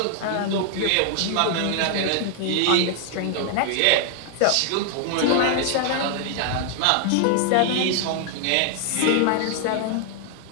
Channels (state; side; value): different; both; correlation 0.00